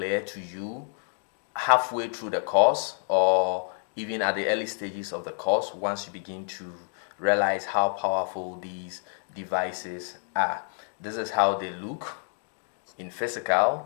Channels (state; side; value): silent; right; 59 dB below the other